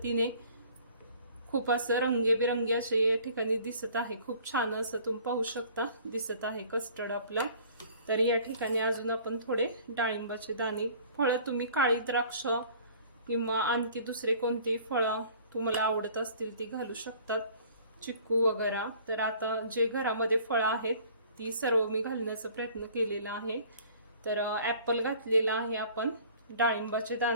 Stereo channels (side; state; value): both; inverted; correlation -0.52